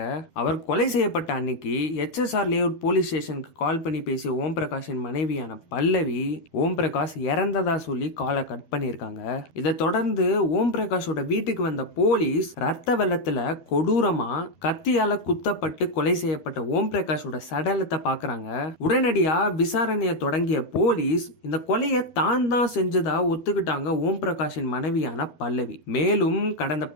அவர் கொலை செய்யப்பட்ட அன்னைக்கு HSR லேஅவுட் போலீஸ் ஸ்டேஷனுக்கு கால் பண்ணி பேசிய ஓம் பிரகாஷின் மனைவியான பல்லவி ஓம் பிரகாஷ் இறந்ததா சொல்லி காலை கட் பண்ணியிருக்காங்க. இதை தொடர்ந்து ஓம் பிரகாஷோட வீட்டுக்கு வந்த போலீஸ் ரத்த வெள்ளத்துல கொடூரமா கத்தியால குத்தப்பட்டு கொலை செய்யப்பட்ட ஓம் பிரகாஷோட சடலத்தை பாக்குறாங்க. உடனடியா விசாரணையை தொடங்கிய போலீஸ் இந்த கொலையை தான் செஞ்சதா ஒத்துக்கிட்டாங்க ஓம் பிரகாஷின் மனைவியான பல்லவி. மேலும் கடந்த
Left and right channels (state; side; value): late; right; 12 ms